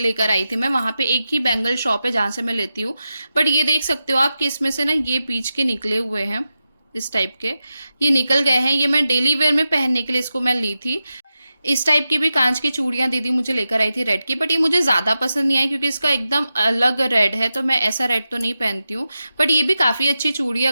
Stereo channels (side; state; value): both; inverted; correlation -0.91